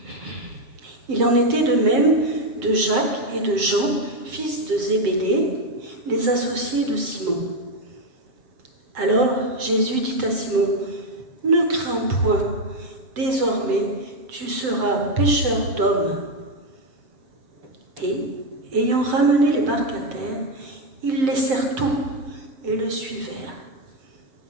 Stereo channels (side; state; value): left; late; 7.7 ms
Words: Il en était de même de Jacques et de Jean, fils de Zébédée, les associés de Simon. Alors Jésus dit à Simon, « Ne crains point, désormais tu seras pêcheur d'hommes. » Et, ayant ramené les barques à terre, ils laissèrent tout et le suivèrent.